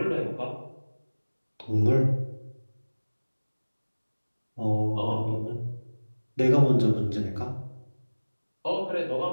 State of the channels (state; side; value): inverted; both; correlation -1.00